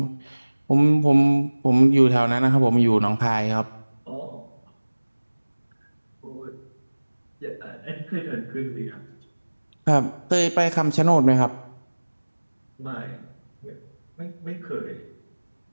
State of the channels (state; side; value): inverted; both; correlation -1.00